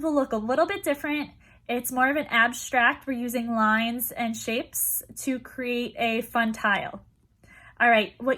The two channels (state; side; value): identical; both; correlation 1.00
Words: will look a little bit different. It's more of an abstract. We're using lines and shapes to create a fun tile. All right,